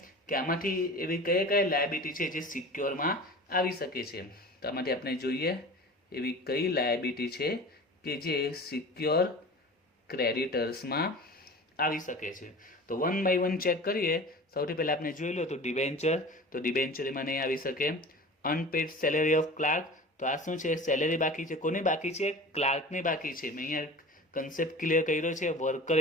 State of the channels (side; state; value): both; normal; correlation 0.37